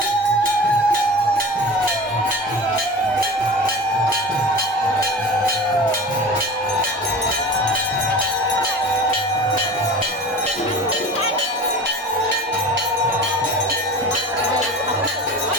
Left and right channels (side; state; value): both; normal; correlation 0.36